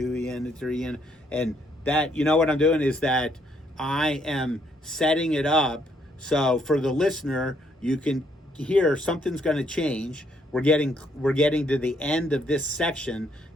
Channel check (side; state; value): both; normal; correlation 0.71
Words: E ended, 3 E ended, and that, you know what I'm doing is that I am setting it up so for the listener, you can hear something's going to change. We're getting to the end of this section,